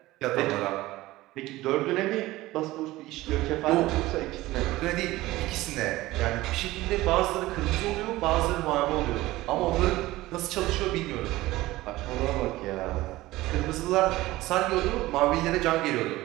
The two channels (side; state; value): left; quieter; 17.9 dB